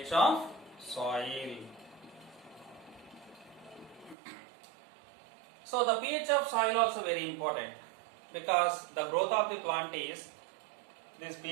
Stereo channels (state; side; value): drops out; left; at 4.2 s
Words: of soil. So the pH of soil also very important, because the growth of the plant is, this